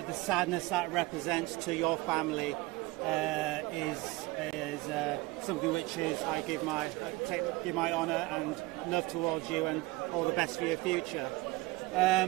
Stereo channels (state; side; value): quieter; left; 20.8 dB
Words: sadness that represents to your family is something which is I give my honour and love towards you, and all the best for your future.